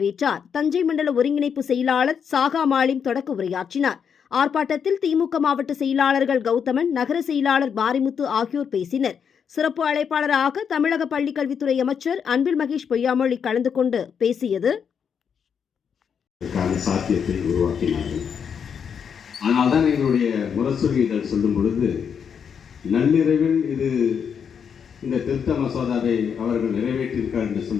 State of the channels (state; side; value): quieter; right; 7.2 dB